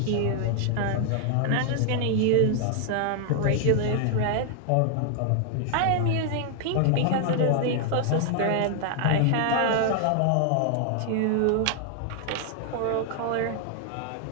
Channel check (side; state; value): both; different; correlation 0.00